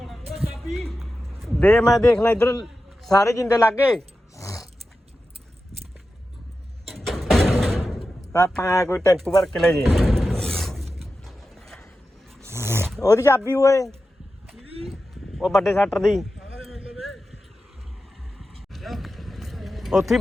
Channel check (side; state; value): both; normal; correlation 0.92